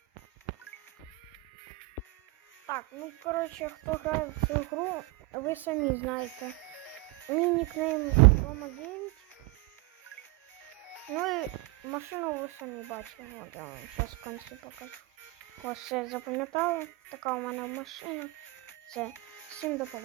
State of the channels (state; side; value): quieter; left; 21.8 dB